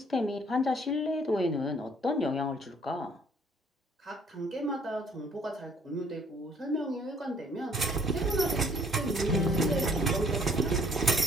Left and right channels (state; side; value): normal; both; correlation 0.60